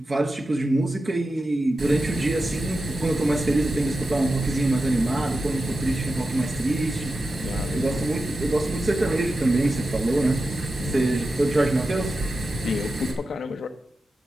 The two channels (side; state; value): both; normal; correlation 0.91